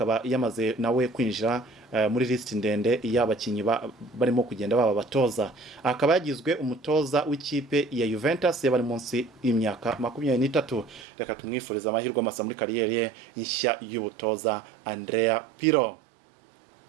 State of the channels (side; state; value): left; drops out; at 11.1 s